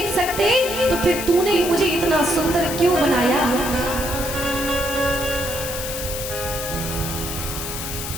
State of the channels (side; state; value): left; noise; hiss, 6 dB below the sound